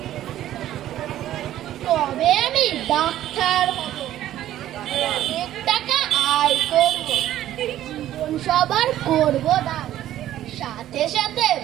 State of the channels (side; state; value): left; quieter; 12.8 dB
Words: আমি ডাক্তার হব, অনেক টাকা আয় করব, জীবন সবার করব দান, সাথে সাথে